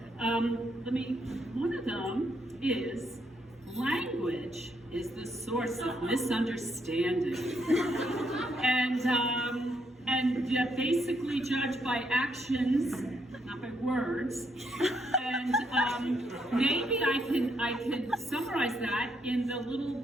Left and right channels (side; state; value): both; normal; correlation 0.75